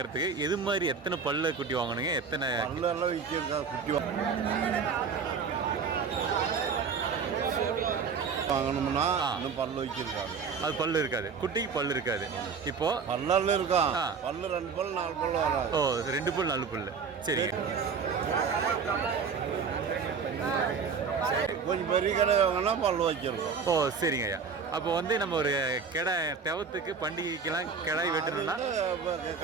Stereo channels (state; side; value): quieter; left; 5.6 dB